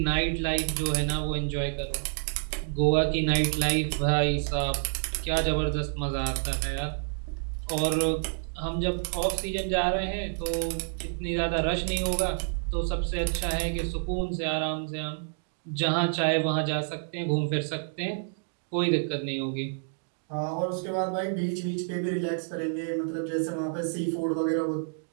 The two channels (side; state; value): left; silent; digital silence